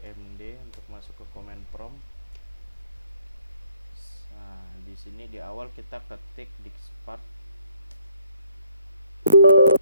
untuk masuk ke command prompt. Nah, di sini di awal kita ketik diskpart.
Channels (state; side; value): inverted; both; correlation -0.67